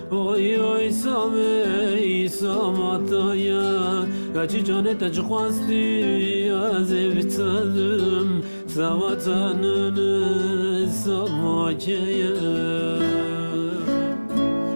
oy oy samey samataya Kaçı canete çıkmazdı az ev tadım Savatanını samakaya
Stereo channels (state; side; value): inverted; both; correlation -1.00